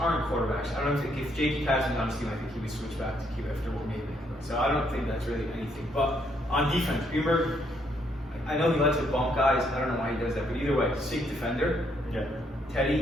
quarterbacks. I don't think if Jakey Casson's on his team, I think he would switch back to Q after what made him. So I don't think that's really anything. But on defense, Greenberg, I know he likes to bump guys. I don't know why he does that, but either way, sick defender. Yeah.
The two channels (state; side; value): normal; both; correlation 0.72